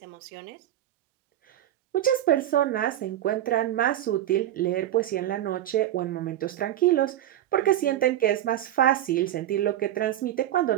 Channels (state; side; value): quieter; left; 12.4 dB